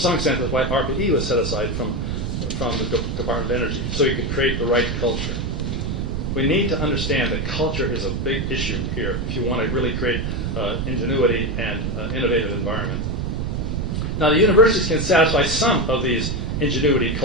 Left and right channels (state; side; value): noise; right; rumble, 2 dB below the sound